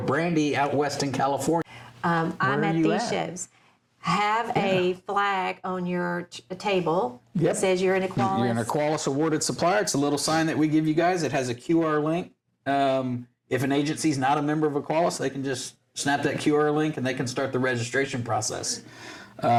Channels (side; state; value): both; identical; correlation 1.00